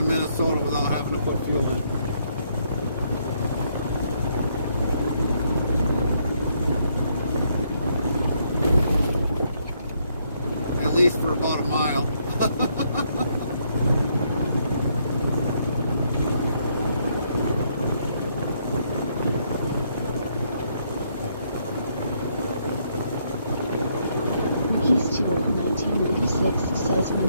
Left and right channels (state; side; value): inverted; both; correlation -0.72